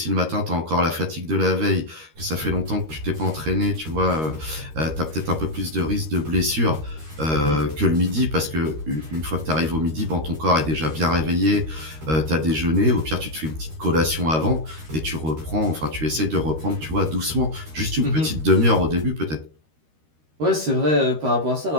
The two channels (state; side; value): late; left; 13 ms